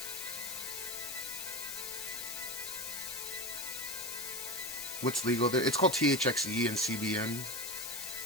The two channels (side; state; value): left; noise; hiss, 5 dB below the sound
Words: What's legal there? It's called THXE and CBN.